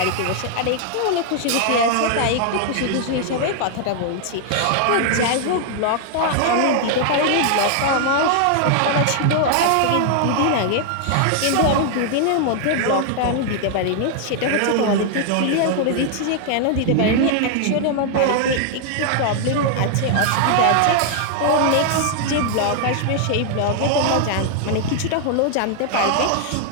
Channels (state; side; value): different; both; correlation 0.00